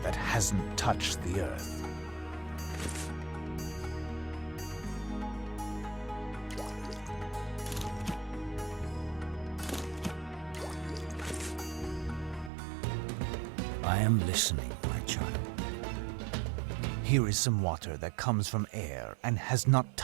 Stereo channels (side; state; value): left; drops out; at 12.5 s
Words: that hasn't touched the earth. I am listening, my child. Here is some water that comes from air and has not